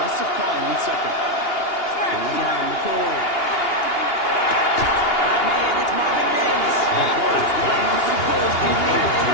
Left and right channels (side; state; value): right; late; 2.8 ms